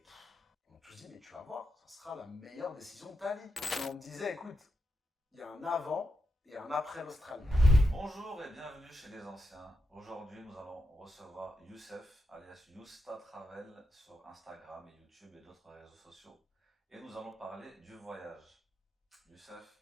On m'a tous dit, mais tu vas voir, ça sera la meilleure décision de ta vie. Et on me disait, écoute, il y a un avant et un après l'Australie. Bonjour et bienvenue chez les anciens. Aujourd'hui, nous allons recevoir Youssef, alias Yousta Travel, sur Instagram et YouTube et d'autres réseaux sociaux. Et nous allons parler du voyage. Youssef,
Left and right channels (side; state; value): both; normal; correlation 0.86